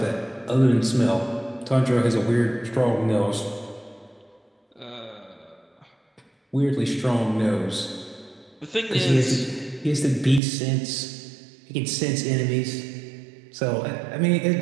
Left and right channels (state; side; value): drops out; left; at 10.4 s